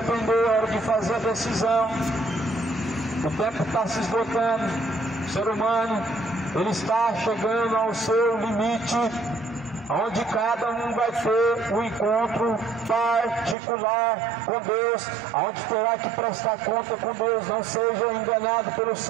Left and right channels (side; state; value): left; drops out; at 13.6 s